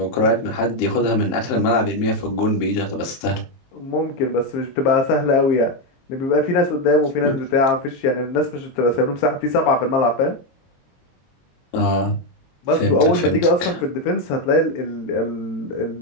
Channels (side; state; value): right; late; 23 ms